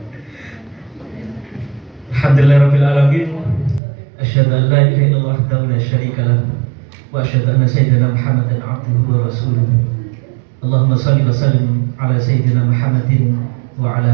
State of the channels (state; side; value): drops out; left; at 3.8 s